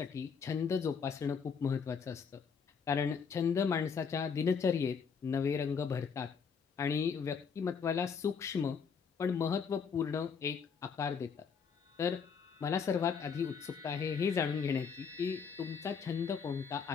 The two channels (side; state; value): right; quieter; 6.1 dB